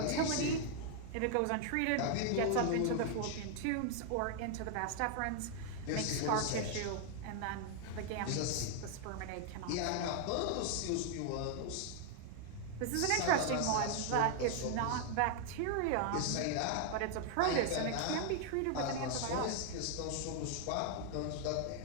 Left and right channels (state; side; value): different; both; correlation 0.00